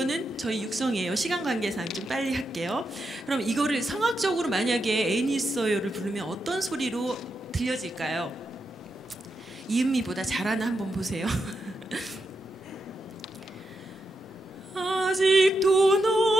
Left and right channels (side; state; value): both; normal; correlation 0.85